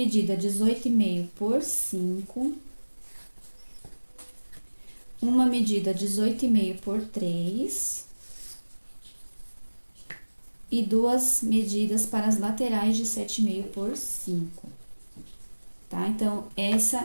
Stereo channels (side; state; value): both; inverted; correlation -1.00